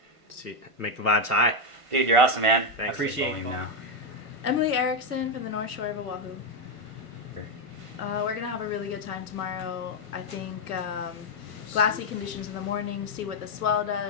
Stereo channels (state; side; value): late; left; 1.5 ms